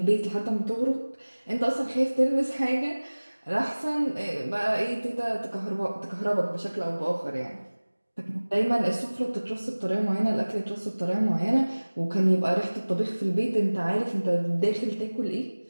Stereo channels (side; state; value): both; inverted; correlation -1.00